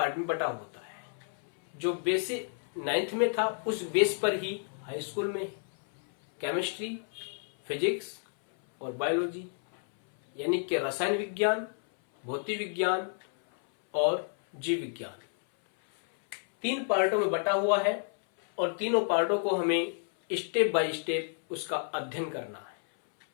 में बटा होता है। जो बेसिक 9th में था उस बेस पर ही हाई स्कूल में केमिस्ट्री, फिजिक्स और बायोलॉजी यानी कि रसायन विज्ञान, भौतिक विज्ञान और जीव विज्ञान 3 पार्टों में बटा हुआ है और तीनों पार्टों को हमें स्टेप बाय स्टेप उसका अध्ययन करना है।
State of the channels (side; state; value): right; silent; 58 dB below the other